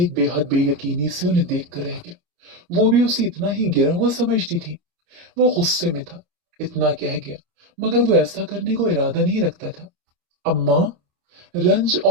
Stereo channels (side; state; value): left; late; 28 ms